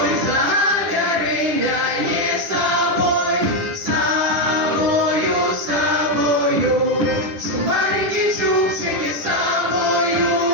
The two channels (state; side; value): late; left; 10 ms